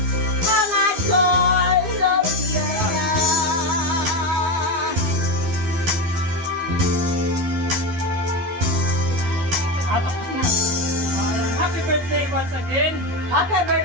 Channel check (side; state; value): left; late; 12 ms